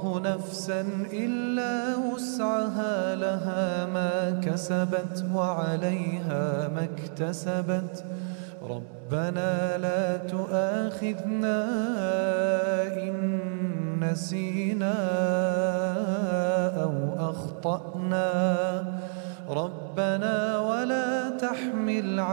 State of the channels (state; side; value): silent; left; digital silence